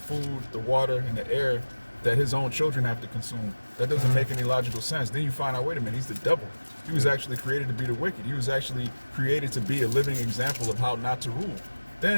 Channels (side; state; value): both; inverted; correlation -1.00